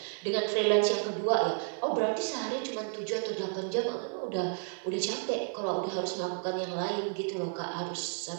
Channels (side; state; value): left; silent; 57 dB below the other